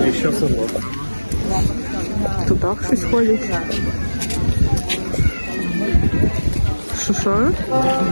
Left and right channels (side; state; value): both; inverted; correlation -1.00